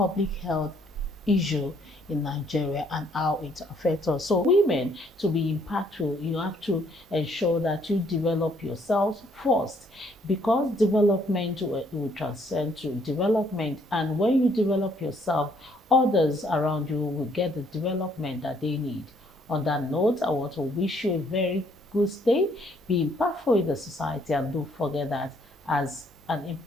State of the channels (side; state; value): both; normal; correlation 0.67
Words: health issue in Nigeria and how it affects us. So women, to be impactful, you have to ensure that you develop yourselves first, because development will transcend to development, and when you develop yourself, others around you will get the development that they need. On that note, I want to wish you a very good stay, be impactful in the society, and don't forget that as an